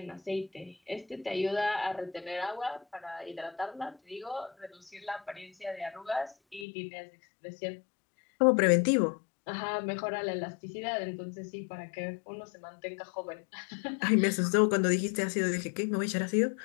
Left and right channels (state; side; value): drops out; right; at 6.7 s